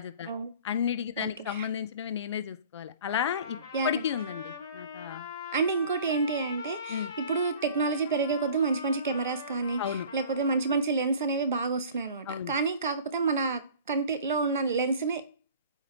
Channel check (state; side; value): inverted; both; correlation -0.45